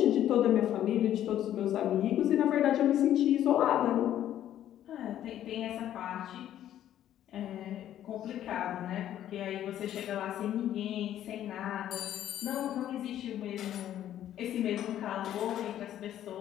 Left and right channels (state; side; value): quieter; right; 11.6 dB